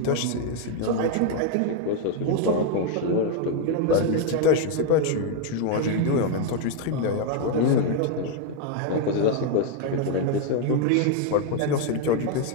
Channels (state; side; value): different; both; correlation 0.01